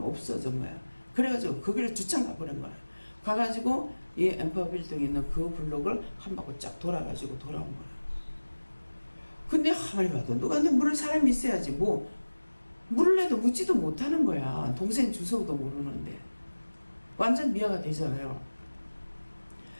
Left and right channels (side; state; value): both; inverted; correlation -1.00